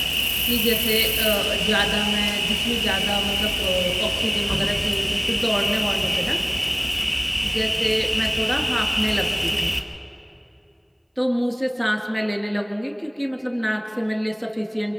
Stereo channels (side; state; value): both; identical; correlation 1.00